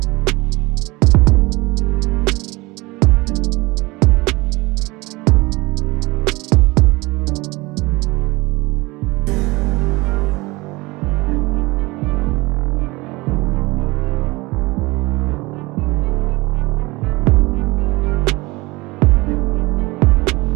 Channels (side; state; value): left; quieter; 22.6 dB